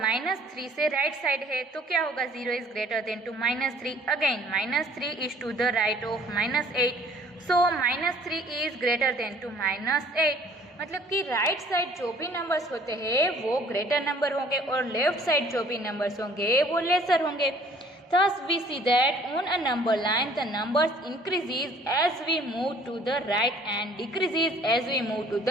से राइट साइड है, तो क्या होगा, 0 is greater than to -3। Again -3 is to the right of -8, so -3 is greater than to -8। मतलब कि राइट साइड जो भी नंबर्स होते हैं वो ग्रेटर नंबर होंगे और लेफ्ट साइड जो भी नंबर्स होंगे वो लेसर होंगे। Thus we see that on a number line the numbers increases as we move to the right and decreases as we move to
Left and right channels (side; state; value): both; normal; correlation 0.56